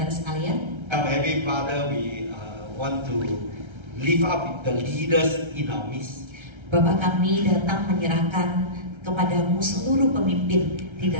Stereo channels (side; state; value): left; late; 1.3 ms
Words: sekalian. Come, Heavenly Father, we want to lift up the leaders in our midst. Bapa kami datang menyerahkan kepadamu seluruh pemimpin di